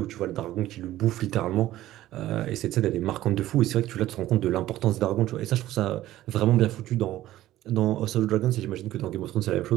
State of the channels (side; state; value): left; quieter; 14.7 dB